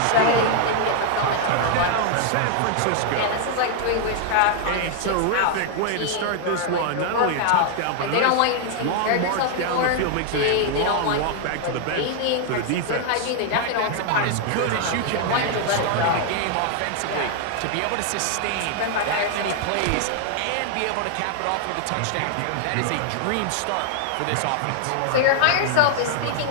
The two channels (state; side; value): different; both; correlation 0.00